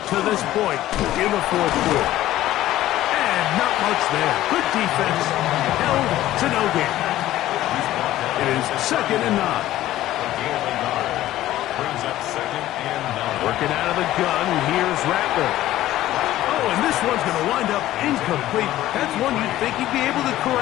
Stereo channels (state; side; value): quieter; right; 14.5 dB